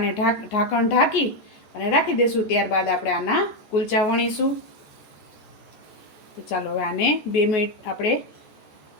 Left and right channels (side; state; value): right; late; 14 ms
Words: ઢાંકણ ઢાંકી અને રાખી દઈશું. ત્યારબાદ આપણે આના કુલચા વણીશું. તો ચાલો હવે આને 2 મિનિટ આપણે